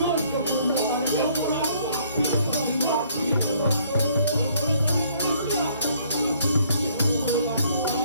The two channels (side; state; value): both; inverted; correlation -0.64